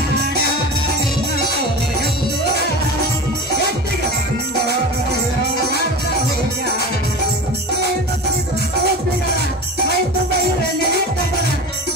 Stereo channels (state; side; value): normal; both; correlation 0.31